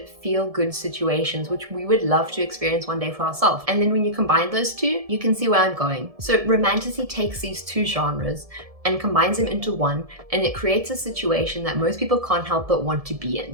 feel-good situations which we would love to experience one day for ourselves. And then when you combine those two, you can see where I'm going. So romantasy takes these two genres and combines them into one, and it creates a situation that most people can't help but want to be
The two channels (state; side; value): late; left; 1.7 ms